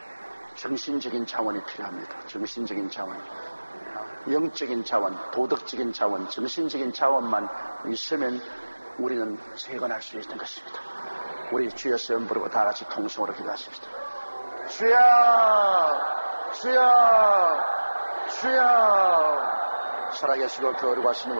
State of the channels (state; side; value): inverted; both; correlation -1.00